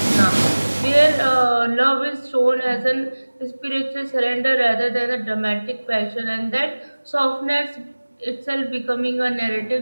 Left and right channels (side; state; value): both; inverted; correlation -1.00